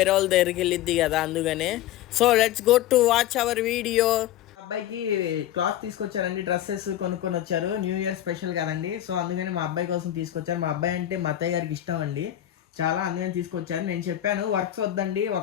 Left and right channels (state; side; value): quieter; right; 12.6 dB